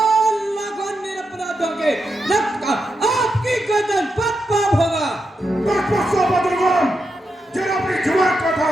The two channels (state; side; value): normal; both; correlation 0.86